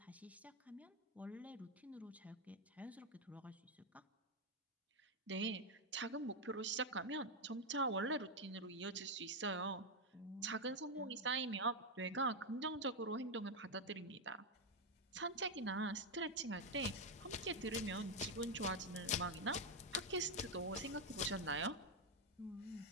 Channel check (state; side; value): normal; both; correlation 0.03